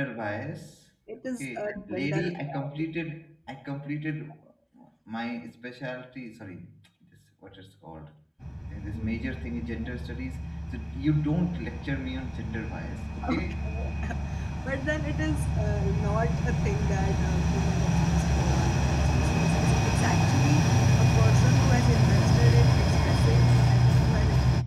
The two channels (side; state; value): both; identical; correlation 1.00